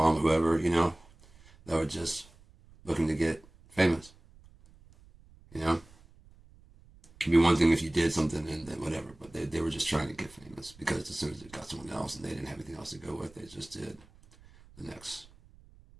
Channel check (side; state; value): right; noise; rumble, 25 dB below the sound